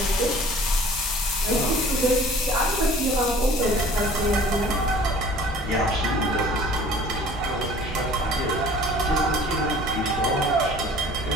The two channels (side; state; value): both; normal; correlation 0.48